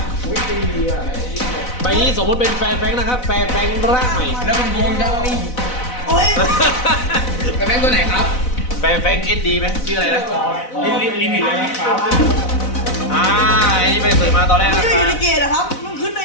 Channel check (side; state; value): right; late; 4.0 ms